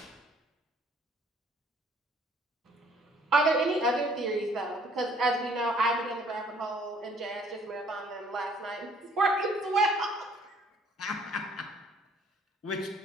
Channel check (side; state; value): both; normal; correlation 0.60